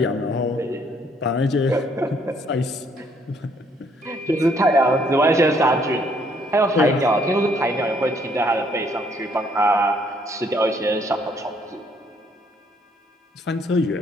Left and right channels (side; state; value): both; normal; correlation 0.67